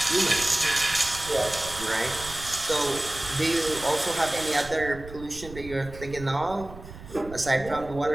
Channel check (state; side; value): noise; right; rumble, 15 dB below the sound